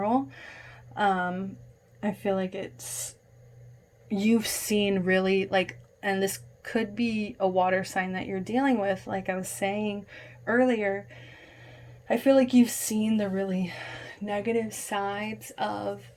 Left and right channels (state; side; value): identical; both; correlation 1.00